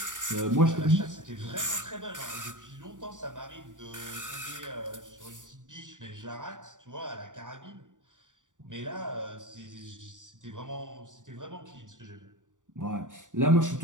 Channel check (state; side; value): late; left; 0.87 ms